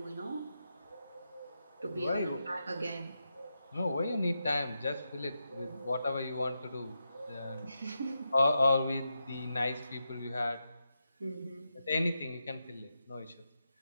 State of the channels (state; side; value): inverted; both; correlation -0.87